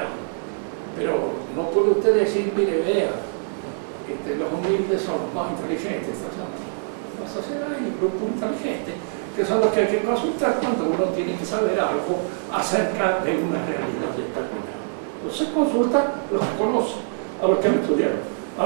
Pero no puede usted decir, mire, vea, los humildes son los más inteligentes. La sociedad hay un grupo inteligente, que son los que hay que consultar cuando uno tiene que saber algo acerca de una realidad determinada. Entonces consulta los que conocen, a los que han estudiado,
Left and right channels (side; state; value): left; silent; digital silence